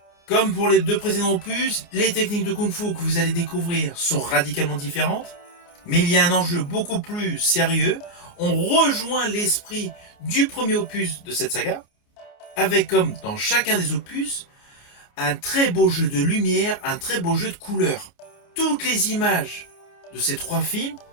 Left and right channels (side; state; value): right; late; 29 ms